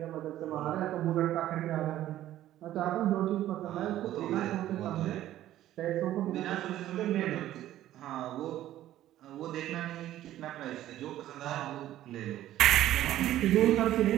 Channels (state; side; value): quieter; left; 13.4 dB